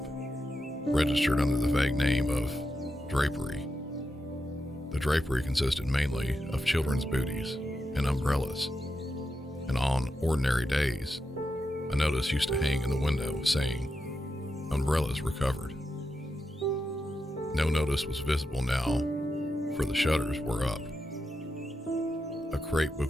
registered under the vague name of drapery. The drapery consisted mainly of children's booties and umbrellas, and on ordinary days, a notice used to hang in the window saying, "Umbrellas recovered." No notice was visible now, for the shutters were up. A crepe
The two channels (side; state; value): both; normal; correlation 0.87